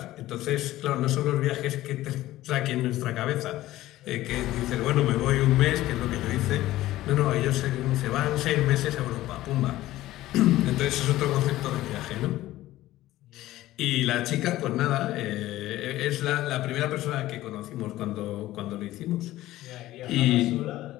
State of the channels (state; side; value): quieter; right; 15.7 dB